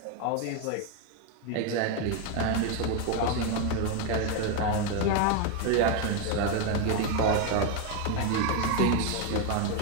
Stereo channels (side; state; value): both; different; correlation 0.02